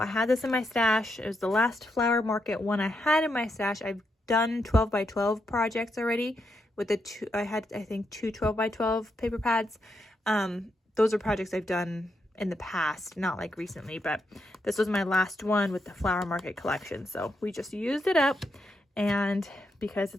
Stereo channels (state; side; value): normal; both; correlation 0.82